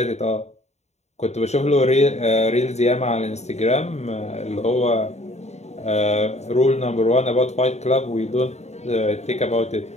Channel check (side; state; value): right; late; 0.32 ms